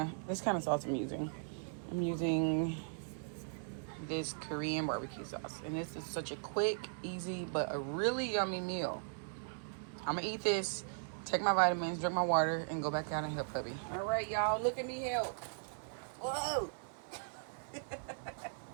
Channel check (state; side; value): silent; left; digital silence